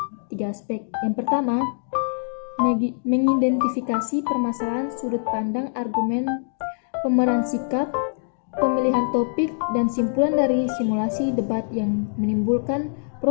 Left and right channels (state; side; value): silent; right; digital silence